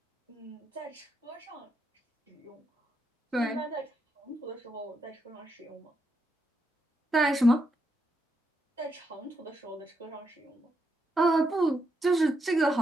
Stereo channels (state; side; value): normal; both; correlation 0.81